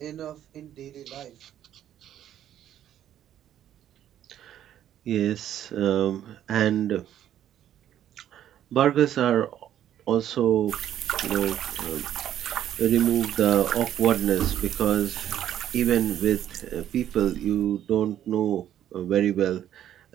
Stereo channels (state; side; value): quieter; left; 11.1 dB